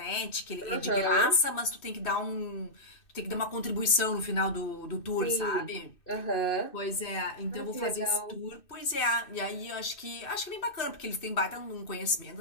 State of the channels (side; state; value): right; late; 2.6 ms